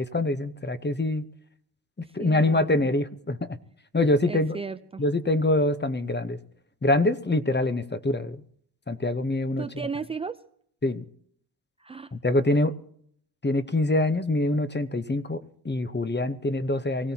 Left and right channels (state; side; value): normal; both; correlation 0.42